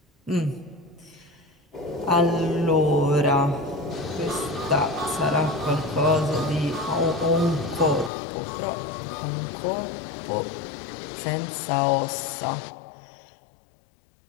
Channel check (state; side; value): drops out; right; at 8.1 s